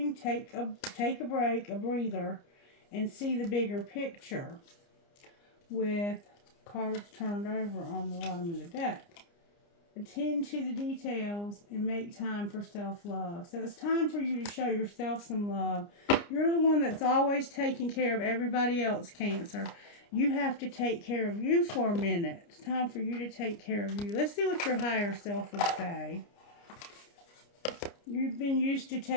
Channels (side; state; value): right; late; 29 ms